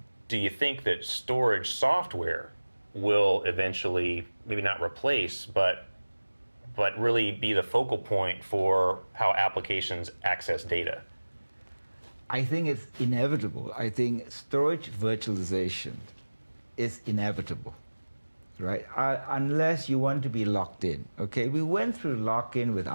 do you think that storage software will eventually, maybe not replace, but really be the focal point for how applications access data? I think it's inevitable. I think storage virtualization is inevitable, right? Unless you want to be locked in, okay? We went through lock-in with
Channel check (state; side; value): inverted; both; correlation -1.00